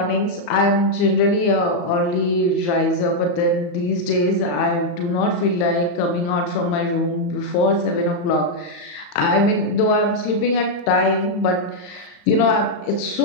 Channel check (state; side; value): late; right; 35 ms